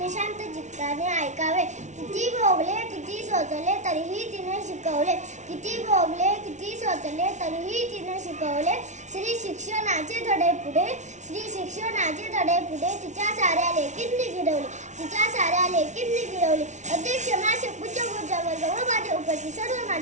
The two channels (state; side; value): late; left; 0.34 ms